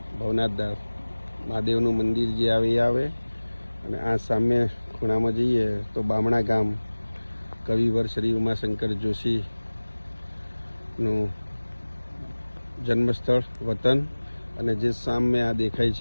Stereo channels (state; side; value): inverted; both; correlation -1.00